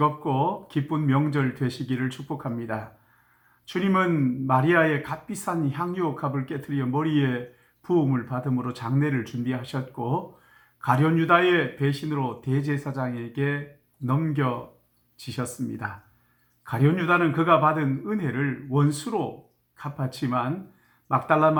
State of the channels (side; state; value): both; identical; correlation 1.00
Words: 기쁜 명절 되시기를 축복합니다. 주님은 마리아의 값비싼 향유 값을 깨뜨려 머리에 부음을 받음으로 장례를 준비하셨고, 가룟 유다의 배신으로 대제사장에게 넘겨지셨습니다. 가룟 유다는 그가 받은 은혜를 원수로 갚았지만, 막달라